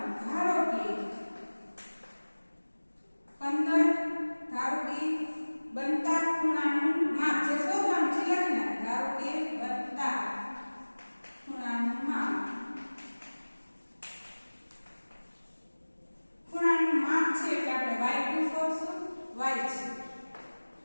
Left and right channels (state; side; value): inverted; both; correlation -1.00